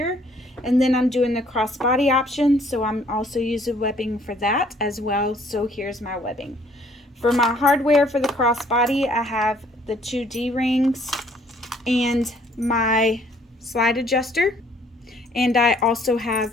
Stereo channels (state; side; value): normal; both; correlation 0.61